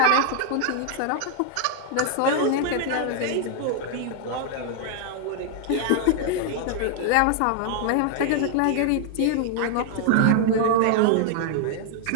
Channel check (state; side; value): different; both; correlation 0.00